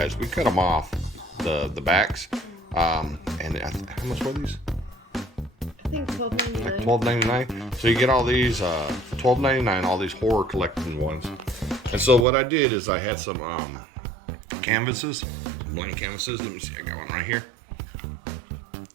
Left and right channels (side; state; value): left; drops out; at 12.2 s